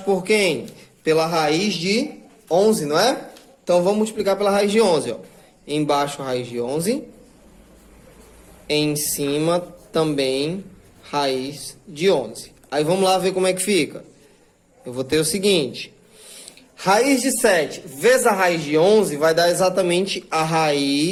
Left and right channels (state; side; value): identical; both; correlation 1.00